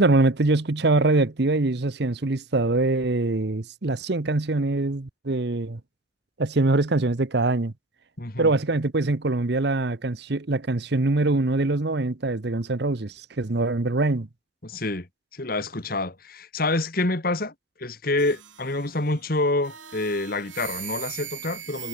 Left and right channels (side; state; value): both; normal; correlation 0.34